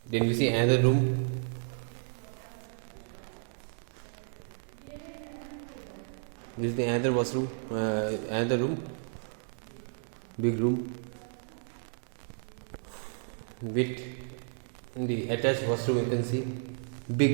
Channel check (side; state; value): left; silent; digital silence